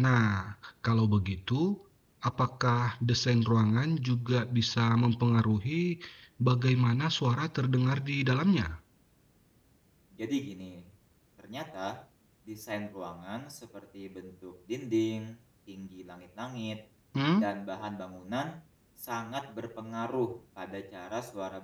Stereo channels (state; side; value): identical; both; correlation 1.00